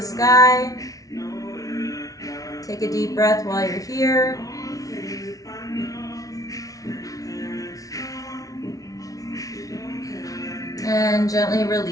sky. Take a deep breath while you're here. And gently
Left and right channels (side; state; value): right; late; 0.17 ms